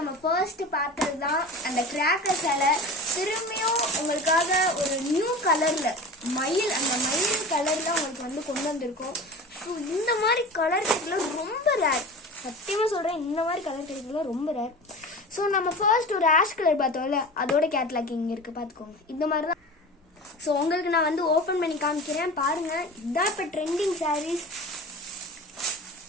ஃபர்ஸ்ட் பார்த்தது தான் அந்த கிராக்கர் சேலை. திரும்பியும் உங்களுக்காக ஒரு நியூ கலரில் அந்த மயில் கலரில் உங்களுக்கு வந்து கொண்டு வந்திருக்கோம். ஸோ இந்த மாதிரி கலர் கிடைக்கலாம் ரொம்ப ரேர், சத்தியமாக சொல்கிறேன், இந்த மாதிரி கலர் கிடைக்கலாம் ரொம்ப ரேர். ஸோ நம்ம ஃபர்ஸ்ட் ஒரு ஆஷ் கலர் பார்த்தோம்ல, அதோட கேட்லாக் இங்கே இருக்குது, பார்த்துக்கோங்க. இந்த மாதிரி தான். ஸோ உங்களுக்கு நான் வந்து ஓப்பன் பண்ணி காமிக்கிறேன் பாருங்கள். இதுதான் இப்போ ட்ரெண்டிங் சாரீஸ்.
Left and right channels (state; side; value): normal; both; correlation 0.34